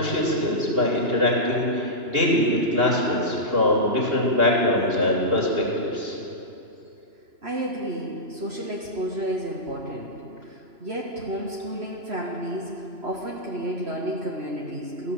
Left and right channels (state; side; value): late; left; 2.9 ms